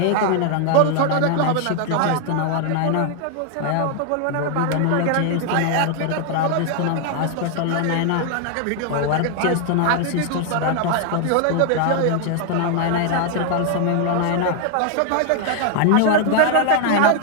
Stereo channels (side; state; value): both; different; correlation 0.00